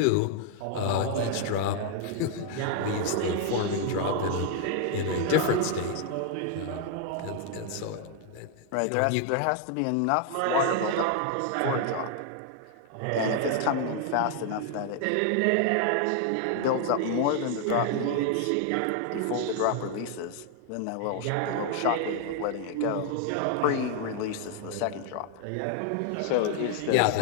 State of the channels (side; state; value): both; different; correlation 0.00